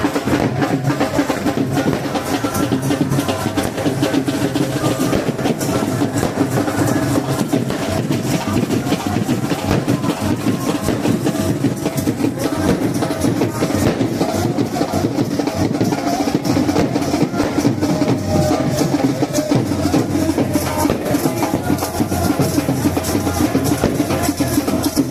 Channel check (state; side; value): identical; both; correlation 1.00